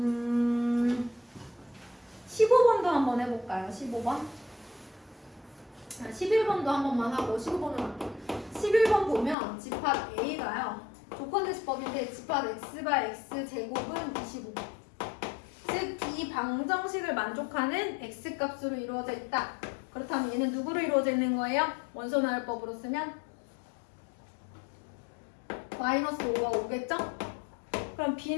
15번도 한번 해볼까요? 15번. 11번도 한 번만 하고 15번으로 할게요. 11번 보면 집합 A가요. 조건 제시법인데 집합 X바 X 제곱은 25. 즉 이 방정식을 만족하는 X 값으로 이루어져 있다. 그렇다면 얘는 누구로 이루어져 있는 거예요? 원소 나열법으로 쓰면 마이너스 5가 5겠죠? 그럼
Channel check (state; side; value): drops out; right; at 9.3 s